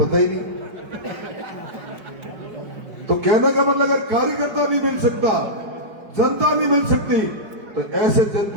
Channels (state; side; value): late; left; 5.1 ms